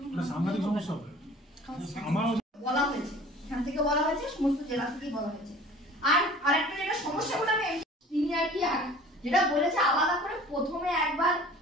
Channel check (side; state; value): both; normal; correlation 0.46